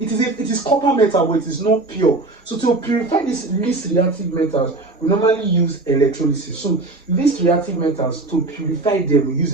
is copper metal, but it is not pure. So to purify these least reactive metals, we normally use electrolysis. So least reactive metals, to purify them, we use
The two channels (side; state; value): left; quieter; 3.2 dB